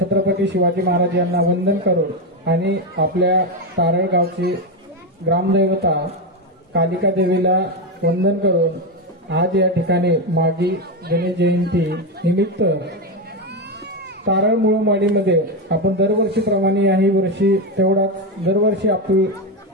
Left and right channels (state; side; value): normal; both; correlation 0.10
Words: शिवाजी महाराज यांना वंदन करून आणि आपल्या तारळगावची ग्रामदैवता कालिका देवीला वंदन करून आज या ठिकाणी मागी गणेश जयंती निमित्त तारळ मुळमाडीमध्ये आपण दरवर्षीप्रमाणे याही वर्षी तेवढाच दरवर्षी आपली